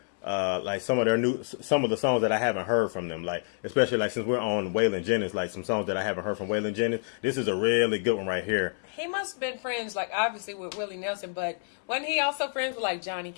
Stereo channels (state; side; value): silent; right; digital silence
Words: some of the songs that I haven't heard from them. Especially since we're on Waylon Jennings, some songs that I haven't heard from Waylon Jennings. This is a really good one right here. He must have been friends, obviously with Willie Nelson, but wasn't he also friends with Johnny